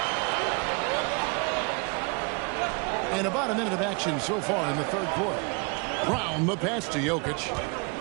And about a minute of action so far in the third quarter. Brown the pass to Jokic.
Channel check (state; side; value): quieter; left; 32.2 dB